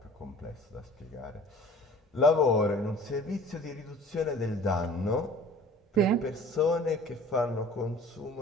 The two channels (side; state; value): both; normal; correlation 0.46